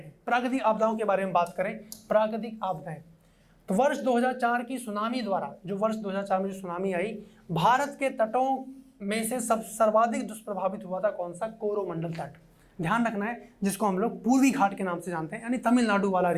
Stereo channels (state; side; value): identical; both; correlation 1.00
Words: प्राकृतिक आपदाओं के बारे में बात करें, प्राकृतिक आपदाएं, तो वर्ष 2004 की सुनामी द्वारा, जो वर्ष 2004 में जो सुनामी आई, भारत के तटों में से सर्वाधिक दुष्प्रभावित हुआ था कौन सा? कोरोमंडल तट। ध्यान रखना है, जिसको हम लोग पूर्वी घाट के नाम से जानते हैं, यानी तमिलनाडु वाला